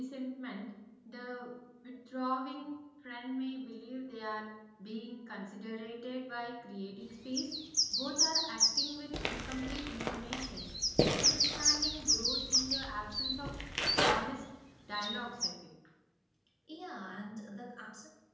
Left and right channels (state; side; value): identical; both; correlation 1.00